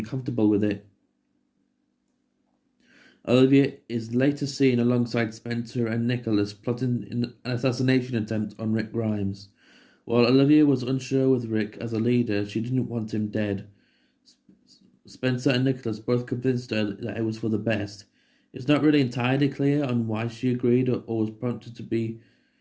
with it. Olivia is later seen alongside Spencer and Nicholas plotting an assassination attempt on Rick Grimes. While Olivia was unsure with Rick as a leader, she didn't want him dead. Spencer and Nicholas both convinced her that it was for the best. It's not really entirely clear on why she agreed or was prompted to be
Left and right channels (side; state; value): both; identical; correlation 1.00